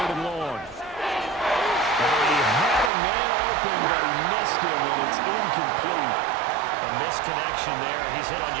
and long. He had a man open, but he missed him, and it's incomplete. A missed connection there. He's hit on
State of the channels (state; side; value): drops out; left; at 2.9 s